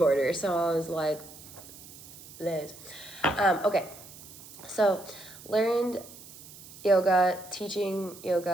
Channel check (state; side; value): noise; right; hiss, 18 dB below the sound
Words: So I was like, Liz. Okay, so learned yoga, teaching